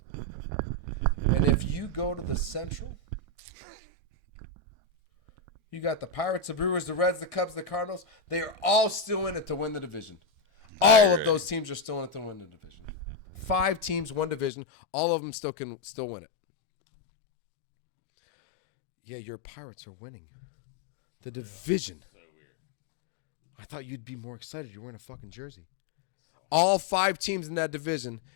And if you go to the Central, you got the Pirates, the Brewers, the Reds, the Cubs, the Cardinals. They are all still in it to win the division. All of those teams are still in it to win the division. 5 teams, one division. All of them still can win it. Yeah, your Pirates are winning. For real. Division. So weird. I thought you'd be more excited. You're wearing a fucking jersey. So All 5 teams in that division.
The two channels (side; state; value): right; drops out; at 14.5 s